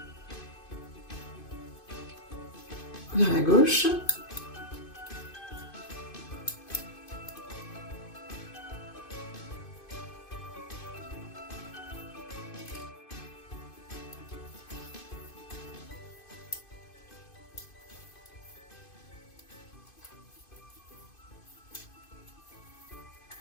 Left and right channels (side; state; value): right; late; 2.5 ms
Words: vers la gauche.